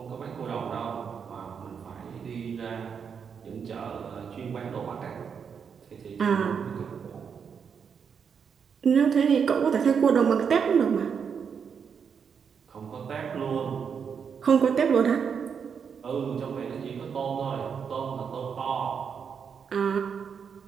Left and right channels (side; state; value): left; quieter; 6.8 dB